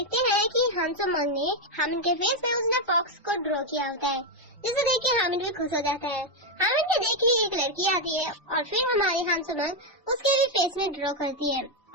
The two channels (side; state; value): both; normal; correlation 0.03